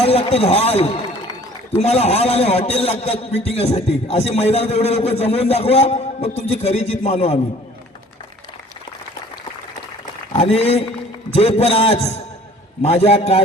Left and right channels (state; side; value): normal; both; correlation 0.52